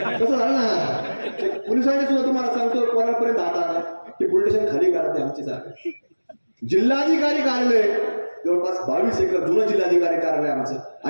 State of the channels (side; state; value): both; inverted; correlation -1.00